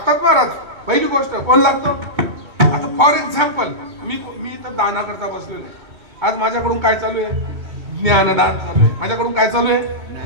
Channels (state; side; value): late; left; 2.2 ms